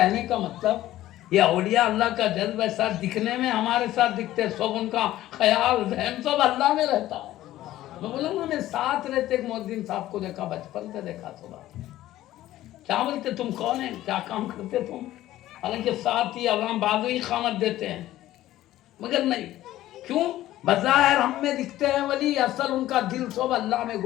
کا مطلب یہ اولیاء اللہ کا جذب ایسا دکھنے میں ہمارے ساتھ دکھتے, سب ان کا خیال ذہن سب اللہ میں رہتا ہے. میں بولا نا, میں ساتھ رہتے ایک مؤذن صاحب کو دیکھا, بچپن سے دیکھا صبح. کیا بولتے تم کون ہیں, کیا کام کرتے تم, حالانکہ ساتھ ہی اذان بازو ہی اقامت دیتے ہیں, مگر نہیں. کیوں؟ بظاہر ہم میں دکھتے ہیں ولی, اصل ان کا دل سب اللہ میں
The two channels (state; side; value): quieter; right; 14.6 dB